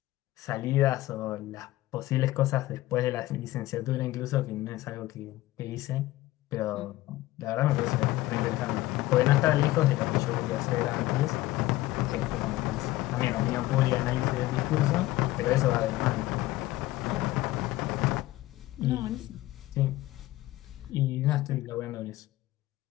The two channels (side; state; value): right; quieter; 17.0 dB